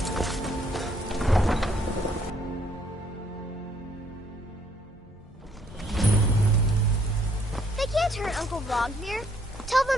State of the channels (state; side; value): normal; both; correlation 0.66